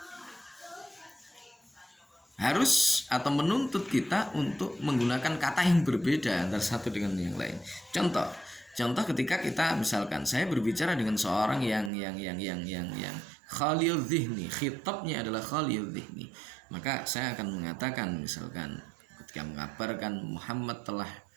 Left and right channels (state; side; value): drops out; left; at 11.9 s